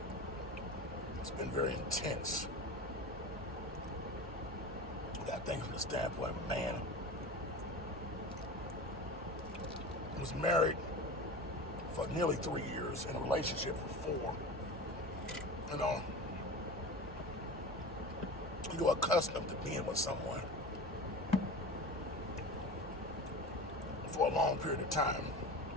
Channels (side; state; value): both; normal; correlation 0.32